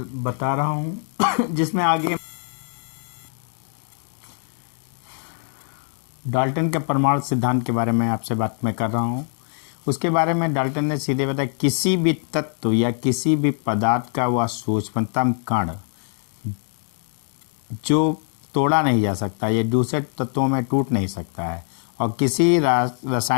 बता रहा हूं जिसमें आगे डाल्टन के परमाणु सिद्धांत के बारे में आपसे बात मैं कर रहा हूं। उसके बारे में डाल्टन ने सीधे बताया किसी भी तत्व या किसी भी पदार्थ का वह सूक्ष्मतम कण जो तोड़ा नहीं जा सकता, ये दूसरे तत्वों में टूट नहीं सकता है, और किसी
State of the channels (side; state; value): right; silent; 63 dB below the other